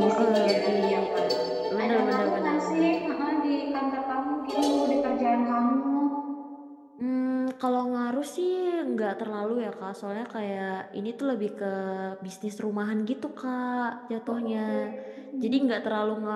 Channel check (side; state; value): both; identical; correlation 1.00